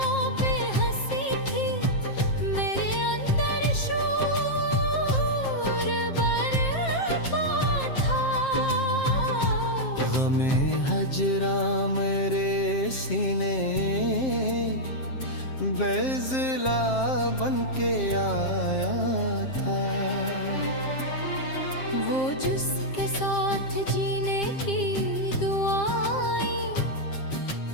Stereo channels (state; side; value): late; right; 7.5 ms